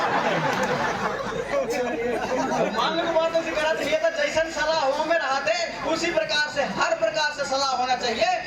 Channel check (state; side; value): identical; both; correlation 1.00